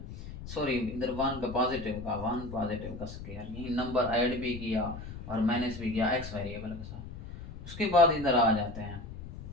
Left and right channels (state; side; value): noise; left; rumble, 11 dB below the sound